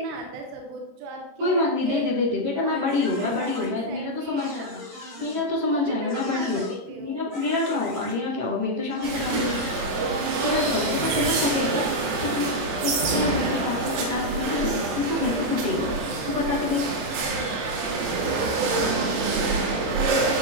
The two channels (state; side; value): late; left; 22 ms